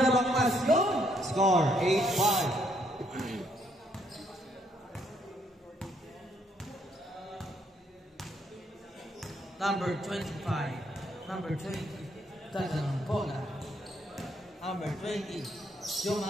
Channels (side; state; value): both; normal; correlation 0.71